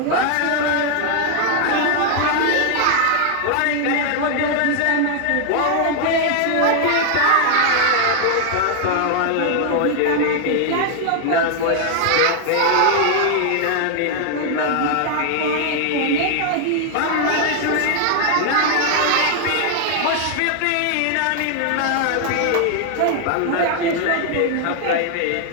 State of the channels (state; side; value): different; both; correlation 0.00